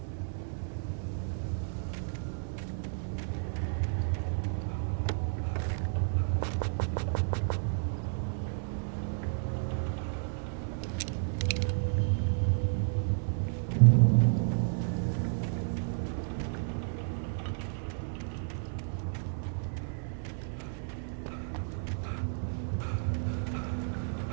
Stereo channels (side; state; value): left; silent; 56 dB below the other